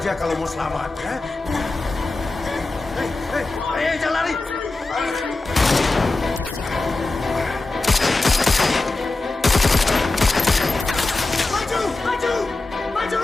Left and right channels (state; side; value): quieter; right; 3.3 dB